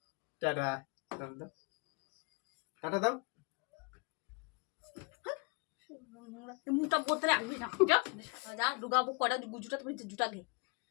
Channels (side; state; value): right; quieter; 31.6 dB